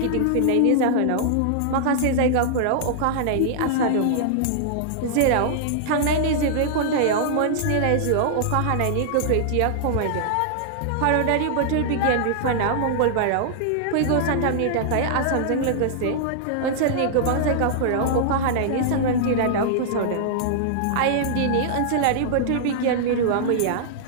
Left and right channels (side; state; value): both; different; correlation -0.01